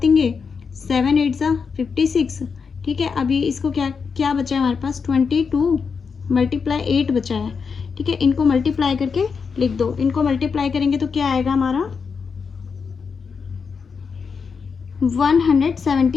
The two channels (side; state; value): right; quieter; 5.6 dB